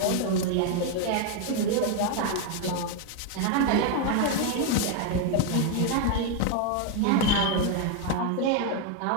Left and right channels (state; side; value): different; both; correlation 0.01